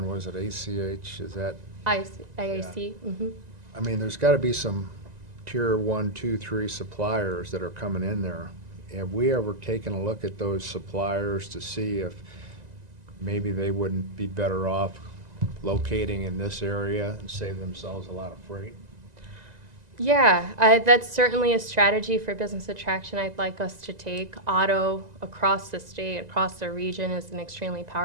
was it ACH, is that, IAC. Mm-hmm. I mean, there's gotta be some tier 1, 2, 3 suppliers that are coming in there. Have we ever taken a look at those suppliers to see if maybe they wouldn't be better off locating in this area and save themselves a lot of freight? Yeah, that's certainly a strategy for business attraction I'd like us to take. Auto across the state, across the region is an extremely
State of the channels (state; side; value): late; left; 1.9 ms